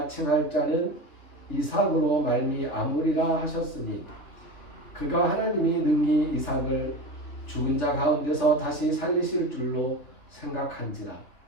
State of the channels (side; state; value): right; late; 3.4 ms